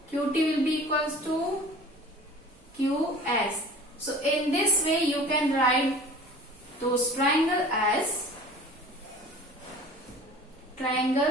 QT will be equals to QS. So in this way you can write those triangle as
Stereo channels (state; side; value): normal; both; correlation 0.43